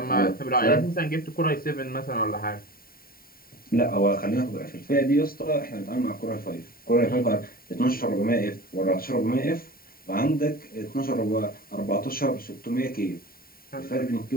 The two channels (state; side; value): late; right; 0.43 ms